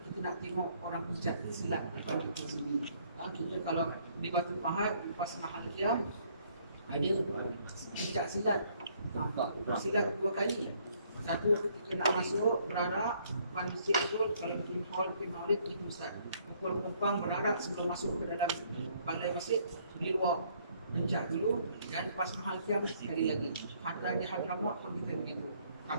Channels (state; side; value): inverted; both; correlation -0.65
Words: kita nak tengok orang pencak silat depan kita sini. Kita kalau di Batu Pahat, pas Mahal Kiam, ada pencak silat. Bersilat 2 kali. Satu ketika nak masuk berarak, depan masjid tu, kalau bikin hall, bikin maulid, gitu Ustaz. Pukul kumpang berarak sebelum masuk ke dalam balai masjid, di luar pencak dulu, dan pas Mahal Kiam sekali lagi. Hatta di Hadramaut pun kita begitu.